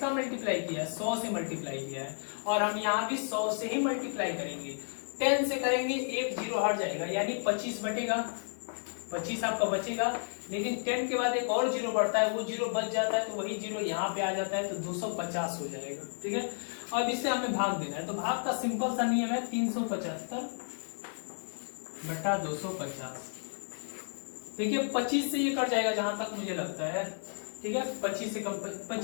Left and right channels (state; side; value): silent; right; 56 dB below the other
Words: मल्टीप्लाई किया है, 100 से मल्टीप्लाई किया है, और हम यहाँ भी 100 से ही मल्टीप्लाई करेंगे। 10 से करेंगे, एक जीरो हट जाएगा, यानी 25 बटेगा, 25 आपका बचेगा। लेकिन 10 के बाद एक और जीरो बढ़ता है, वो जीरो बच जाता है, तो वही जीरो यहाँ पे आ जाता है, तो 250 हो जाएगा। ठीक है, अब इससे हमें भाग देना है, तो भाग का सिंपल सा नियम है 375 बटा 250। देखिए 25 से ये कट जाएगा जहां तक मुझे लगता है। ठीक है, 25 से कम,